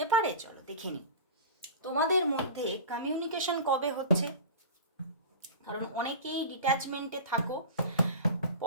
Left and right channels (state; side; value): inverted; both; correlation -0.32